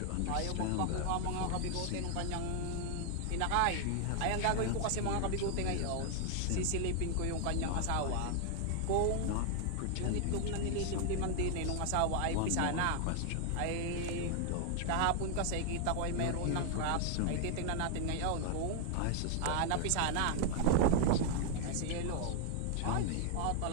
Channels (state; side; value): different; both; correlation 0.00